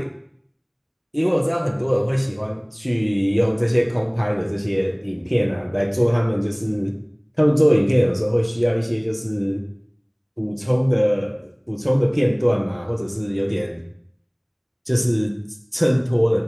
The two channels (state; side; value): identical; both; correlation 1.00